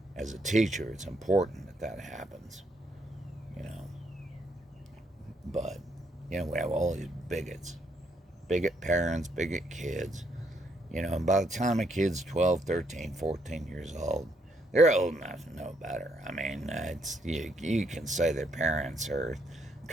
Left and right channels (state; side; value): normal; both; correlation 0.74